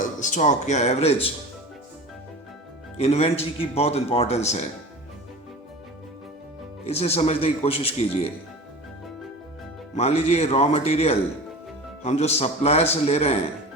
स्टॉक या एवरेज इन्वेंट्री की बहुत इंपॉर्टेंस है, इसे समझने की कोशिश कीजिए। मान लीजिए रॉ मटेरियल हम जो सप्लायर से ले रहे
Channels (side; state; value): both; normal; correlation 0.34